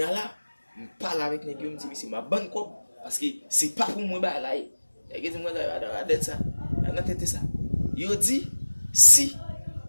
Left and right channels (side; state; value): both; inverted; correlation -1.00